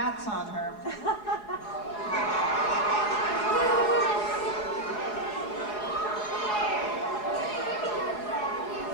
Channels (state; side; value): late; right; 4.8 ms